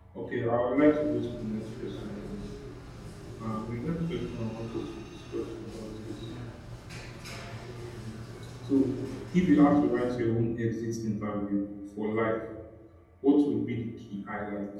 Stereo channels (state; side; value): identical; both; correlation 1.00